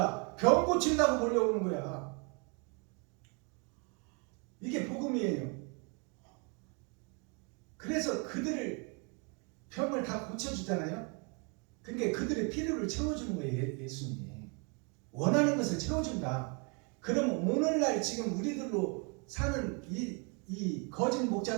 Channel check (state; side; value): quieter; left; 34.4 dB